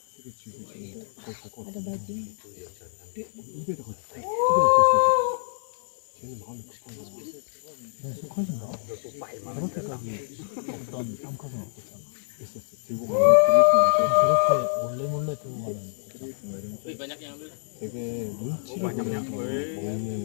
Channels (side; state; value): right; silent; digital silence